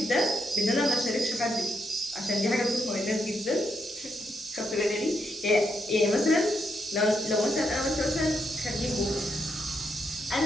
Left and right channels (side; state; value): both; normal; correlation 0.80